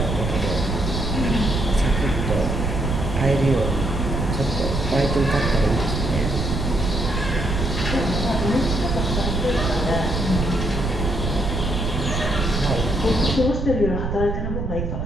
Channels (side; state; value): right; noise; rumble, 2 dB below the sound